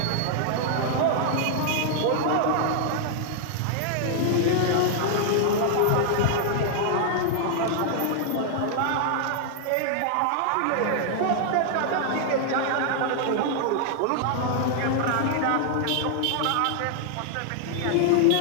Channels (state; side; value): different; both; correlation 0.00